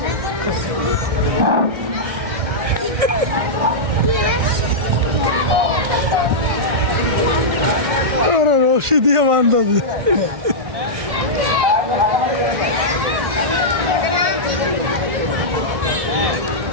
রশি দিয়ে বান্ধব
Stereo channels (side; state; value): left; late; 1.6 ms